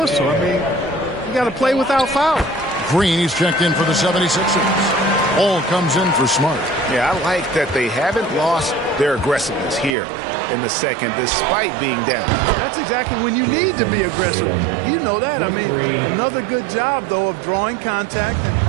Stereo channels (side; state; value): left; drops out; at 10.0 s